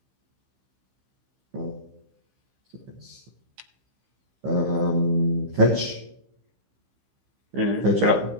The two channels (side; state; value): left; late; 15 ms